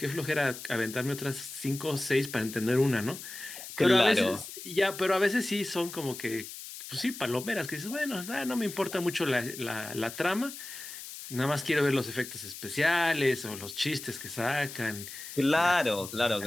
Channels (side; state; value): left; noise; hiss, 11 dB below the sound